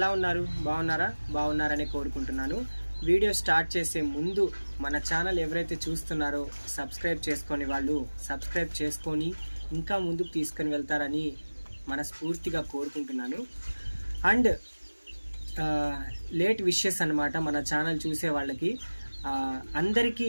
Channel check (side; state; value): both; inverted; correlation -1.00